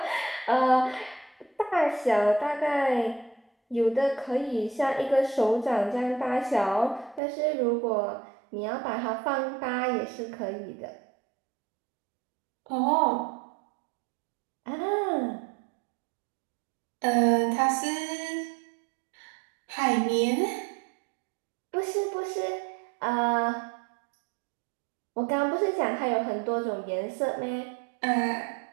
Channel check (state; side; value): drops out; left; at 7.2 s